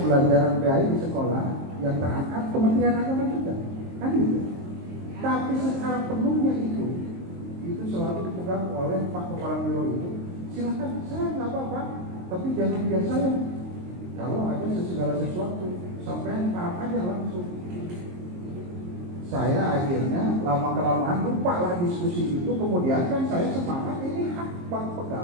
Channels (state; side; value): late; left; 22 ms